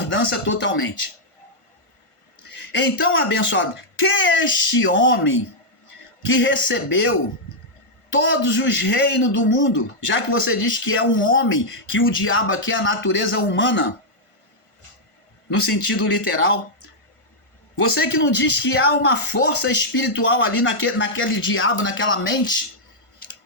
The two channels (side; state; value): right; late; 1.5 ms